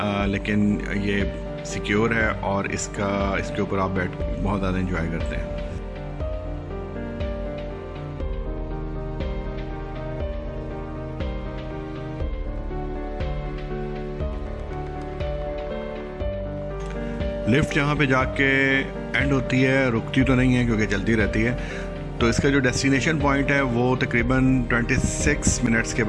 लेकिन ये सिक्योर है और इसके ऊपर आप बैठ बहुत ज़्यादा इंजॉय करते हैं। लिफ्ट यहाँ पे जाके एंड होती है, रुकती तो नहीं है क्योंकि चलती रहती है। तो इसका जो डेस्टिनेशन पॉइंट है वो तकरीबन 26 मिनट्स के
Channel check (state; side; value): identical; both; correlation 1.00